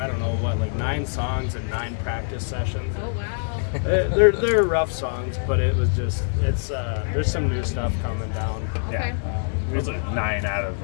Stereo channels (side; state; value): right; silent; 62 dB below the other